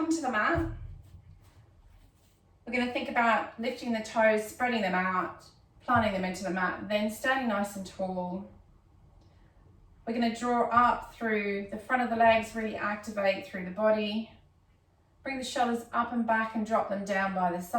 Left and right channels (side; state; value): both; identical; correlation 1.00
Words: to the mat. We're going to think about lifting the toes, spreading them out, planting them into the mat, then standing nice and tall. We're going to draw up through the front of the legs, really activate through the body. Bring the shoulders up and back and drop them down by the